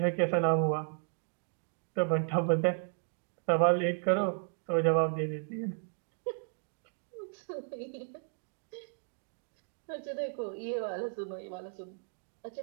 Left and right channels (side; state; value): left; silent; 55 dB below the other